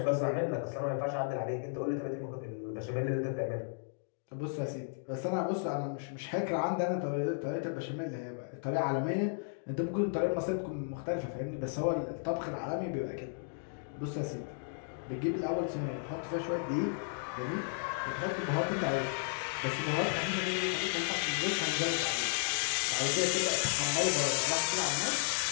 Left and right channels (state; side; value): silent; right; digital silence